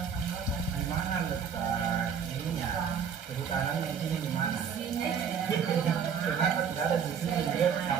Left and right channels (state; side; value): quieter; left; 7.2 dB